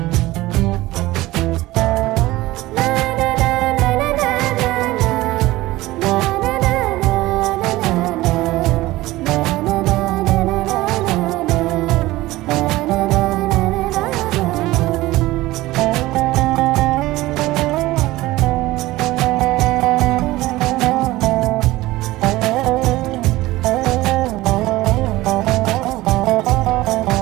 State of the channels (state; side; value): quieter; left; 18.2 dB